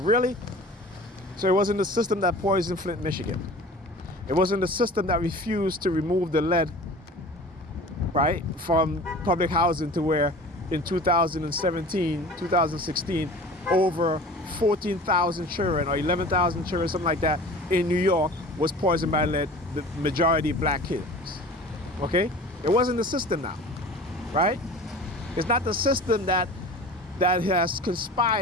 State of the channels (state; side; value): normal; both; correlation 0.40